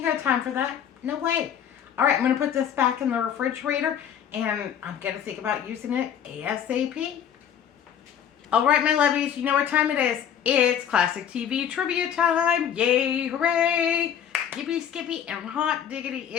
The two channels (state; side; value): quieter; right; 9.0 dB